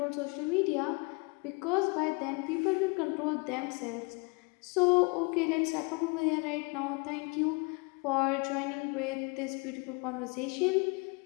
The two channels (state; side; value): quieter; right; 31.2 dB